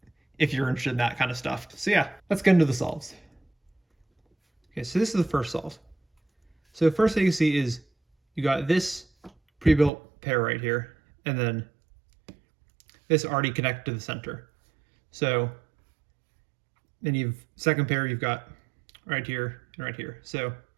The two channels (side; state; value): left; drops out; at 9.9 s